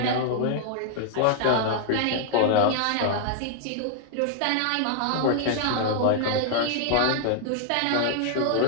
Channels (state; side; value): different; both; correlation -0.01